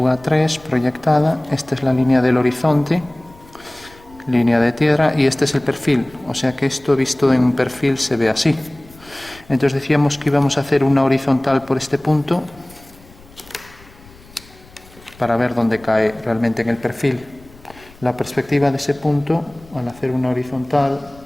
3 proyectada. Esta es la línea del horizonte. Línea de tierra. Y este es el perfil. O sea que esto visto en un perfil se ve así. Entonces decíamos que íbamos a hacer una horizontal por este punto para ver dónde cae realmente en el perfil. La perspectiva de ese punto, al hacer una horizontal,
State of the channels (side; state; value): left; noise; rumble, 24 dB below the sound